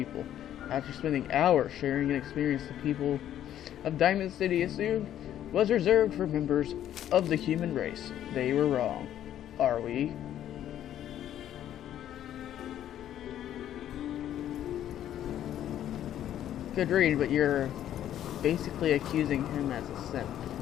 after spending hours sharing an experience the people of Diamond City assumed was reserved for members of the human race. They were wrong. Are we? Good read, but you're basically accusing him as a simp.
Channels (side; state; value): right; quieter; 11.3 dB